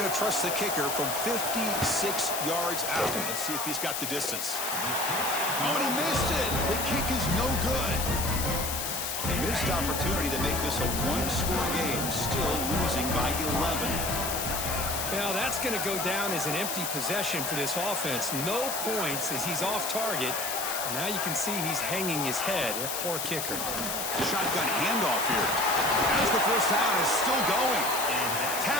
to trust the kicker from 56 yards out. Let's see if he's got the distance. Oh, and he missed it. The kick is no good. A missed opportunity to make this a one-score game, still losing by 11. Well, that's going to go down as an empty possession for this offense. No points as he's off target. Now you can see he's hanging his head. A poor kicker. Shotgun handoff here. As the first down is still going.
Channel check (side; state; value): left; noise; hiss, 3 dB below the sound